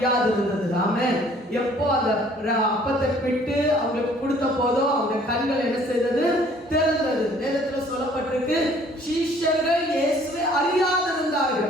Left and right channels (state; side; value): normal; both; correlation 0.57